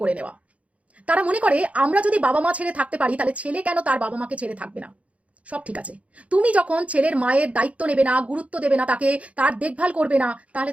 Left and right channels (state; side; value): late; left; 0.065 ms